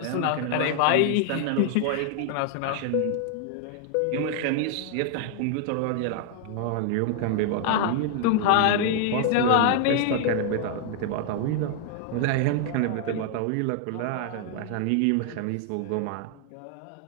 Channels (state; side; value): different; both; correlation 0.00